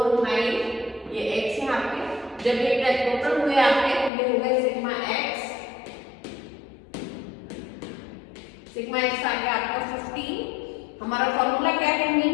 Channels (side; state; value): right; drops out; at 4.1 s